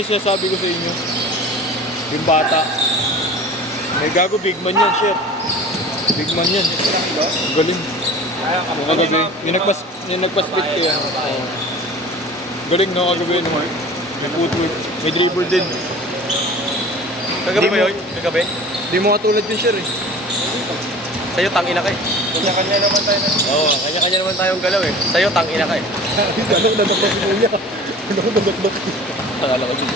sinasabi ko sa inyo. Yung bata. May gago, big man yan, shit. Big man yan. Ang galing. Yung kagabi. Yung nagpa-split ko yan. Oo. Galing no, kagabi no. May footwork. May dribble din. Kagabi ba Di mo- yun? Kagabi? Di mo katulad yun, sir eh. Sa'yo tangina ka eh. Kanya-kanya naman tayo na. Oo, kanya-kanya naman tayong galaw eh. Sa'yo tangina ka eh. Anong nadadak si Kuya? Anong nadadak? Akala ko dito.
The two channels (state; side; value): normal; both; correlation 0.41